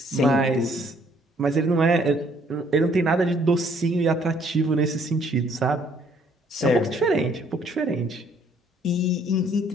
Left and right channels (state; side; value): normal; both; correlation 0.63